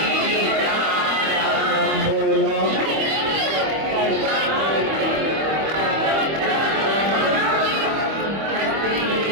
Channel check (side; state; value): left; late; 25 ms